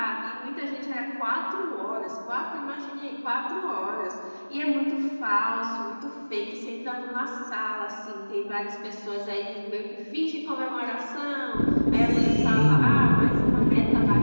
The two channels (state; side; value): inverted; both; correlation -1.00